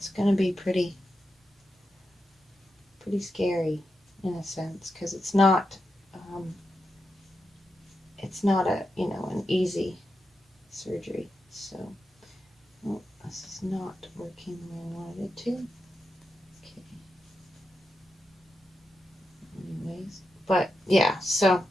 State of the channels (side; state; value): both; normal; correlation 0.87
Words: going to be pretty scary in a sense, because it's not an easy surgery. So this is not working the way I wanted it to. But yeah, so,